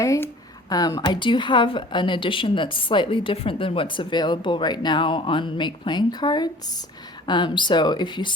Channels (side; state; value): both; normal; correlation 0.47